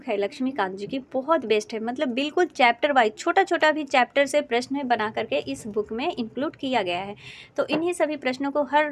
है लक्ष्मीकांत जी की, बहुत बेस्ट है। मतलब बिल्कुल चैप्टर वाइज, छोटा छोटा भी चैप्टर से प्रश्न बना करके इस बुक में इंक्लूड किया गया है। तो इन्हीं सभी प्रश्नों को हर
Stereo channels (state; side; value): identical; both; correlation 1.00